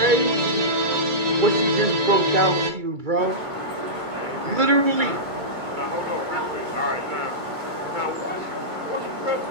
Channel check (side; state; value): left; late; 2.2 ms